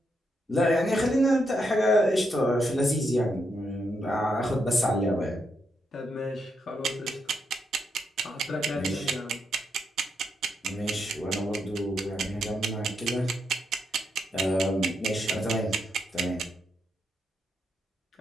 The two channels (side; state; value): both; normal; correlation 0.80